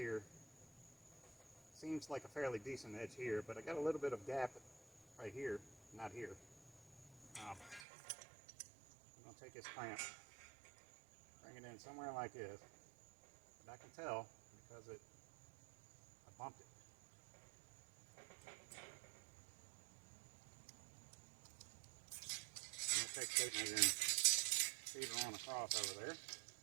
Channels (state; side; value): drops out; left; at 7.8 s